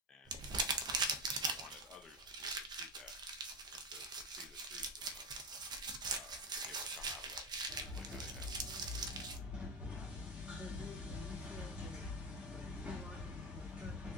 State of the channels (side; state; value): both; normal; correlation 0.16